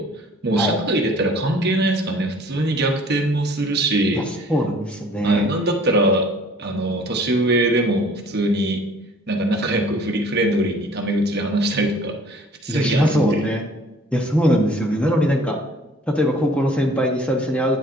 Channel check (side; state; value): both; normal; correlation 0.52